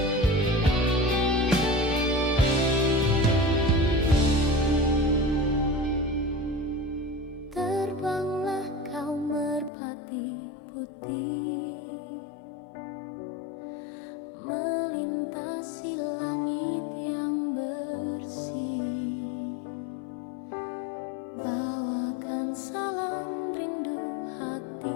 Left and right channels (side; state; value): right; drops out; at 9.7 s